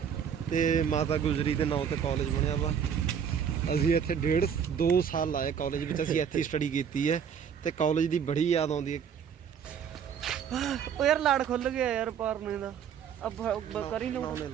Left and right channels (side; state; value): left; quieter; 7.7 dB